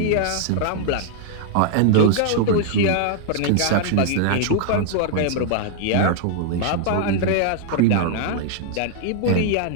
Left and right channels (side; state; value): both; different; correlation -0.01